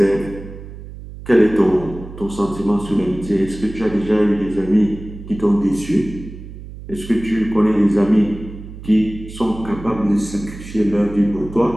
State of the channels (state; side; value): noise; right; hum, 13 dB below the sound